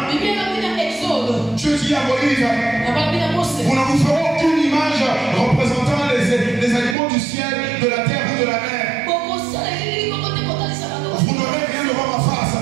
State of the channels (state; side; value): drops out; left; at 7.0 s